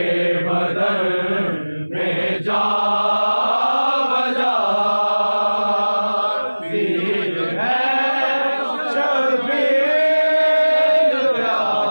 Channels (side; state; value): both; inverted; correlation -1.00